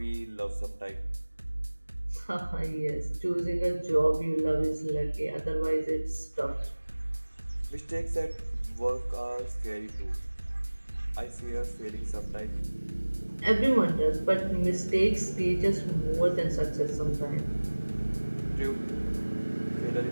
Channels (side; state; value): both; inverted; correlation -1.00